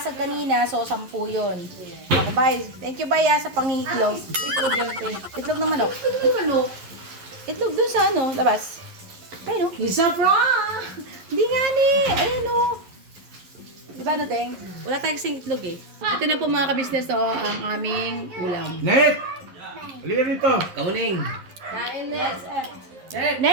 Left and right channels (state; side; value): late; left; 11 ms